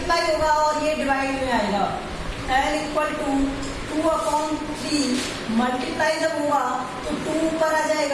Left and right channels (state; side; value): identical; both; correlation 1.00